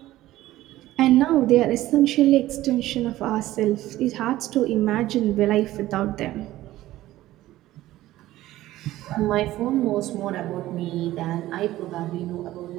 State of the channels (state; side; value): quieter; left; 15.5 dB